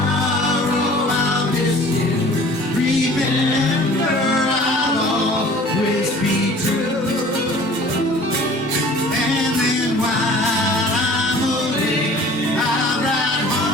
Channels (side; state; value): both; normal; correlation 0.47